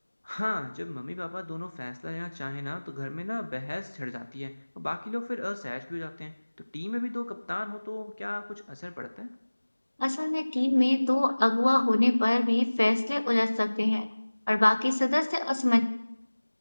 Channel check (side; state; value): both; inverted; correlation -1.00